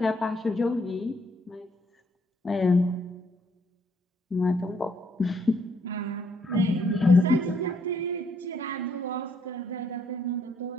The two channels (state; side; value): normal; both; correlation 0.70